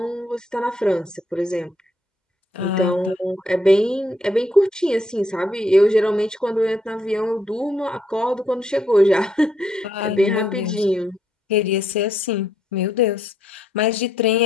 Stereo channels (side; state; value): both; normal; correlation 0.74